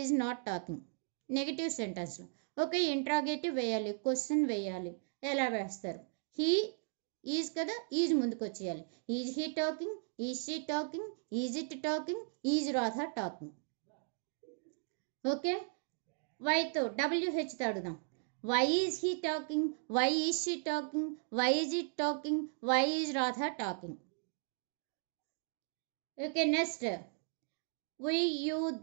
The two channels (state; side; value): silent; left; 53 dB below the other